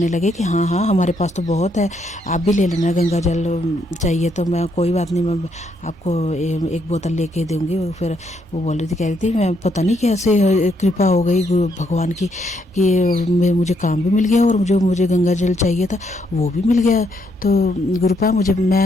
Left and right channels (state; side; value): normal; both; correlation 0.74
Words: लगे कि हाँ हाँ हमारे पास तो बहुत है, आप भी ले लेना गंगा जल चाहिए तो। मैं कोई बात नहीं, मैं आपको एक बोतल लेके दूंगी। फिर वो कह रही थी मैं पता नहीं कैसे कृपा हो गई गुरु भगवान की कि मुझे काम भी मिल गया और मुझे गंगा जल चाहिए था वो भी मिल गया। तो गुरुपा